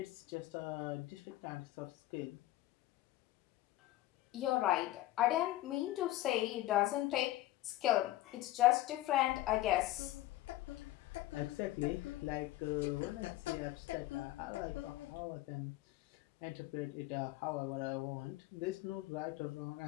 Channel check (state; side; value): quieter; right; 15.9 dB